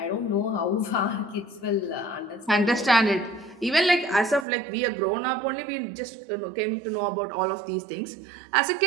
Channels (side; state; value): left; drops out; at 4.5 s